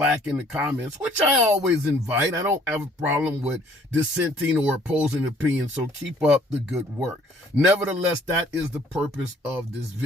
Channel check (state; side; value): normal; both; correlation 0.58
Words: in the comments, which I always invite. I don't have a problem with dissenting or opposing opinions, so keep up the good work. Nevertheless, that is the purpose of this